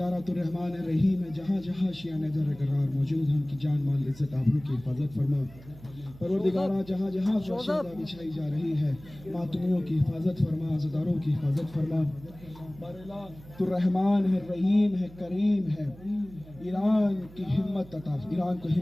تو رحمان رحیم ہے، جہاں جہاں شیعہ در قرار موجود ہیں ان کی جان مال عزت آبرو کی حفاظت فرما۔ پروردگارہ جہاں جہاں فرش عزا بچھائی جا رہی ہے ماتمیوں کی حفاظت فرما، عزاداروں کی حفاظت فرما۔ باراللہ تو رحمان ہے، رحیم ہے، کریم ہے، ایران کو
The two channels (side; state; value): right; noise; hum, 20 dB below the sound